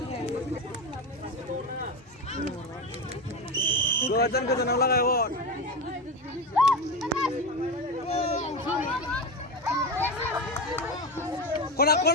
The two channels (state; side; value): normal; both; correlation 0.18